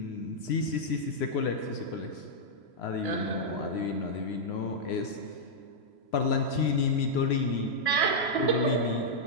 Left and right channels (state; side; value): late; right; 3.0 ms